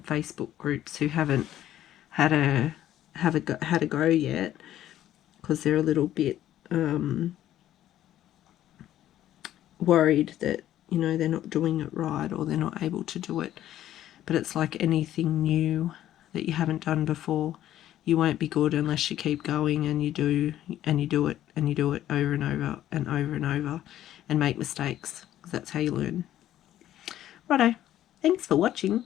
Facebook groups who haven't had a go yet, because they're a little bit worried that, you know, they're not doing it right or they're not able to do it. But it's like anything new that you haven't done before. You won't be good unless you keep going and you do it and you do it over and over and over and over and make mistakes, because that's how you learn. Righto, thanks for watching.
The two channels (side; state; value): right; quieter; 12.5 dB